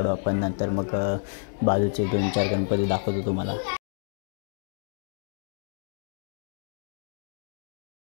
आपण, नंतर मग बाजूचे 2-4 गणपती दाखवतो तुम्हाला.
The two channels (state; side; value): silent; right; digital silence